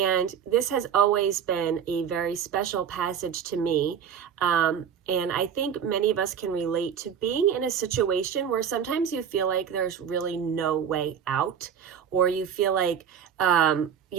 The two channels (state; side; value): quieter; left; 8.0 dB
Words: this has always been a very special passage to me. And I think many of us can relate to being in a situation where sometimes you feel like there's really no way out, or you feel like,